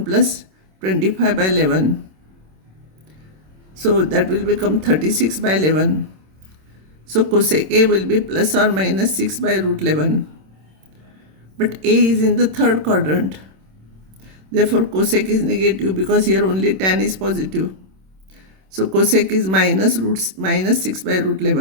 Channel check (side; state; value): left; late; 26 ms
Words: plus 25 by 11. So, that will become 36 by 11. So, cosec A will be plus or minus 6 by root 11. But A is in the third quadrant. Therefore, cosec is negative because here only tan is positive. So, cosec is minus 6 by root